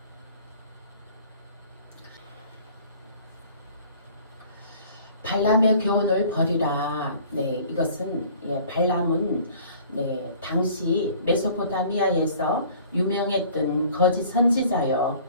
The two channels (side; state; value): both; inverted; correlation -0.51